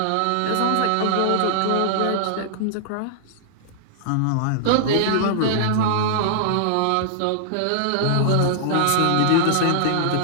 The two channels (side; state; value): both; different; correlation -0.01